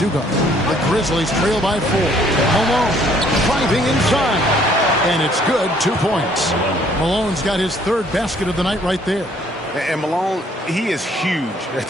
guard. The Grizzlies trail by 4. Malone driving inside. And it's good, 2 points. Malone's got his 3rd basket of the night right there. And Malone, he is huge at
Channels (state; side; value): normal; both; correlation 0.62